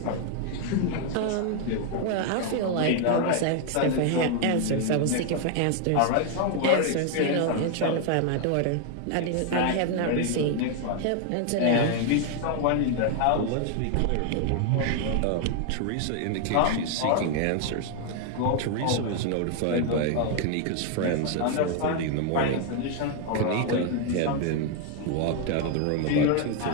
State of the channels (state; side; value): different; both; correlation 0.00